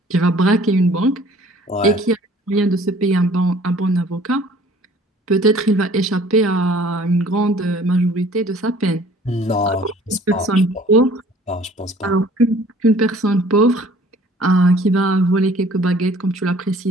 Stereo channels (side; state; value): both; normal; correlation 0.53